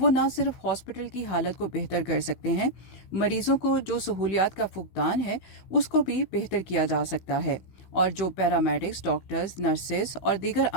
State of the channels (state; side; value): late; right; 16 ms